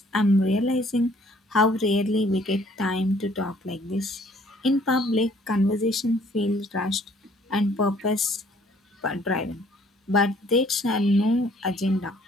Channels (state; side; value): normal; both; correlation 0.60